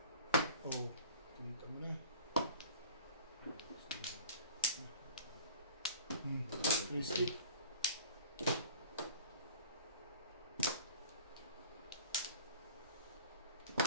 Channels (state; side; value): inverted; both; correlation -0.43